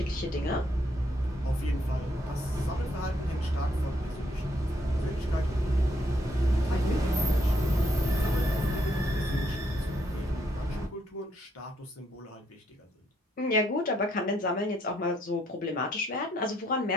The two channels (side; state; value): both; normal; correlation 0.72